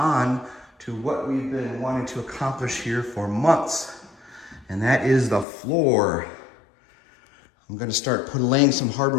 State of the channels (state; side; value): drops out; right; at 5.5 s